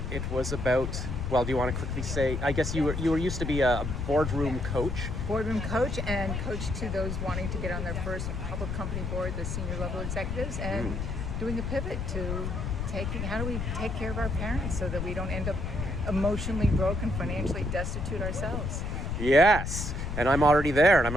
it was about, well, do you want to quickly say, I guess you were used to be a boardroom coach. Boardroom coach and coach to those wanting to get on their first public company board, the senior level executives, and doing a pivot to how do we take care of our parents so that we don't end up emotionally broken, financially destitute ourselves. Yes, and I'm already there, and I'm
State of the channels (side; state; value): left; noise; rumble, 3 dB below the sound